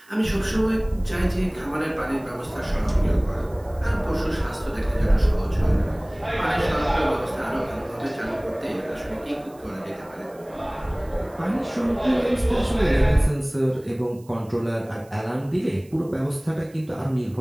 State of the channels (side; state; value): right; noise; hiss, 28 dB below the sound